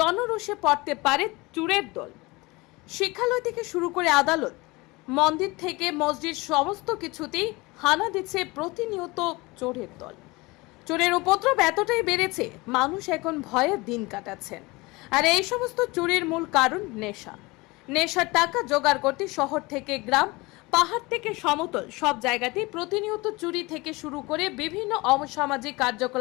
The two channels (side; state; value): right; quieter; 23.5 dB